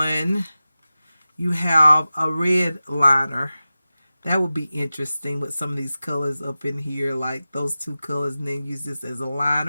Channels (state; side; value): inverted; both; correlation -0.95